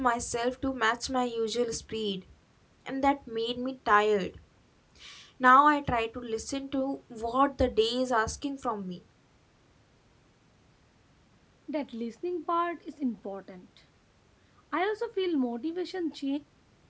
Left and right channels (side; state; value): both; identical; correlation 1.00